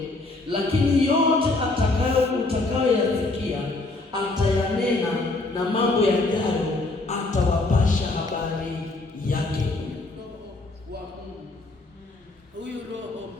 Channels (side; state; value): right; quieter; 3.1 dB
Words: lakini yote utakayoyasikia atayanena, na mambo yajayo atawapasha habari yake. Roho wa Mungu, huyu Roho